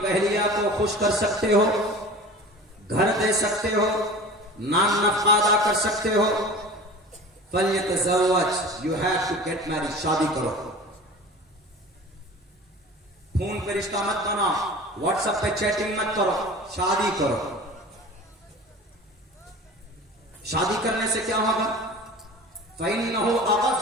اہلیہ کو خوش کر سکتے ہو، گھر دے سکتے ہو، نان نفقہ ادا کر سکتے ہو، فلیتزوج، you have to get married, شادی کرو۔ فون پہ رشتہ مت بناؤ، واٹس ایپ پہ چیٹنگ مت کرو، شادی کرو۔ شادی کرنے سے کیا ہوگا؟ فَإِنَّهُ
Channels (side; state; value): both; normal; correlation 0.38